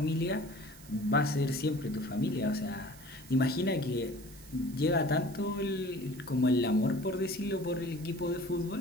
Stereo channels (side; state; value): right; noise; hiss, 20 dB below the sound